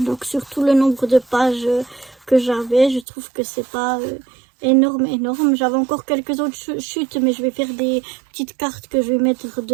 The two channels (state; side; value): drops out; left; at 3.1 s